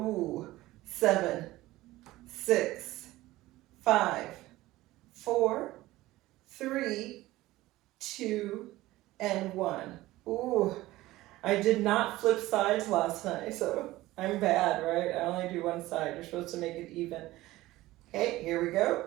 7, 6, 5, 4, 3, 2, and 1. Ooh, I did not flip sides last night, so I'm bad, right? I only do one side. You're supposed to make it even. Okay, here we go.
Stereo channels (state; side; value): quieter; left; 17.5 dB